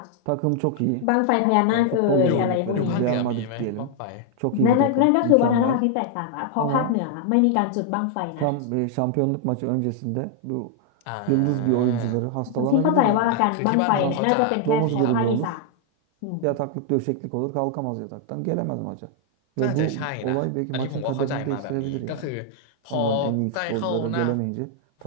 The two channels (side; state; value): both; different; correlation 0.00